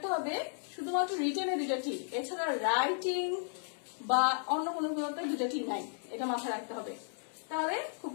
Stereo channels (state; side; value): silent; right; 55 dB below the other